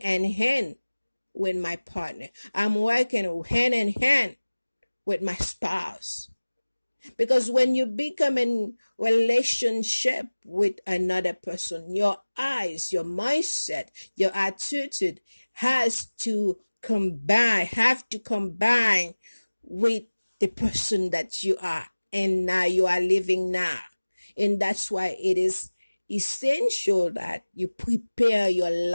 in hand with my partner. I'm working hand in hand with my spouse. Because when you become in relationship with another person, your eyes, your mindset, your attitude have to combine with the person that you are and now you are living now. And that's why it is essential that you prepare your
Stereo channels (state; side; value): inverted; both; correlation -1.00